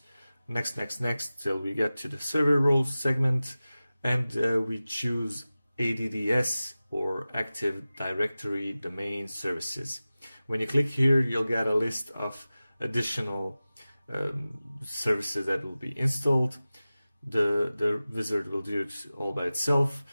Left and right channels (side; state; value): both; inverted; correlation -0.96